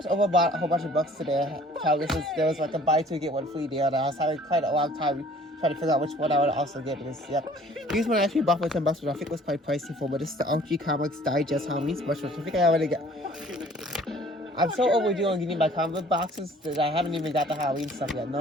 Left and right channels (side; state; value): both; normal; correlation 0.54